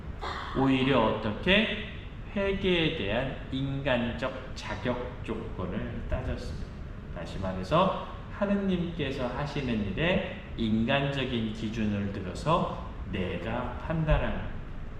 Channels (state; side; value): identical; both; correlation 1.00